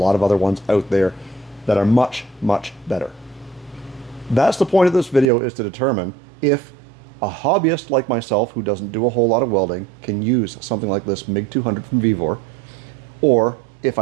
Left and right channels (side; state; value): left; drops out; at 5.2 s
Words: of other ones out there that are much, much better. That's the point of this video, is to determine if a hobbyist like myself who doesn't do a whole lot of welding can use something like this MIG200 from Vevor, or if